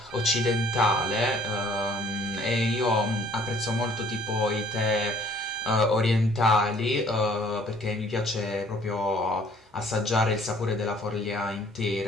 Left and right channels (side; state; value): both; normal; correlation 0.58